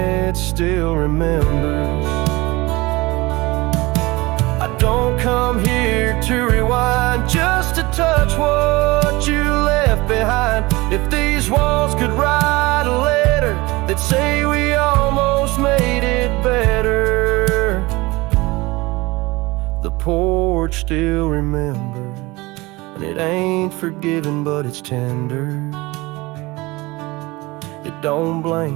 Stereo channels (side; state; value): left; quieter; 22.1 dB